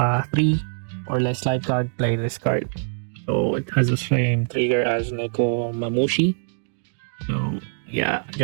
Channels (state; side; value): silent; left; digital silence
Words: or less life card, play this card. So it has the same trigger as Neko Mamushi. So yeah,